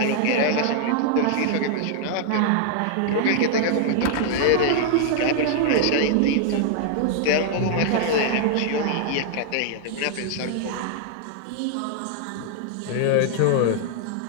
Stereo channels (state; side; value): different; both; correlation 0.00